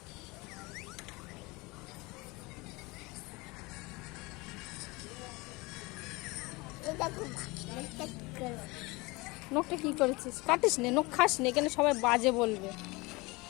নখটা কি করেছিস? কাটিস নে, নখ খাস নে, কেন সবাই বাজে বলবে।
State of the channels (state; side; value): quieter; right; 24.2 dB